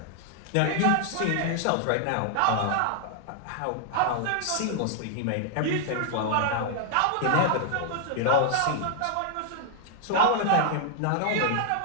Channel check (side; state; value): both; different; correlation 0.00